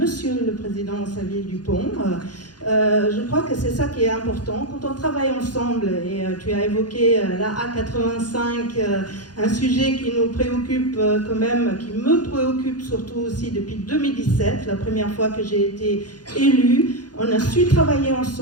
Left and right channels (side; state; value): right; late; 0.69 ms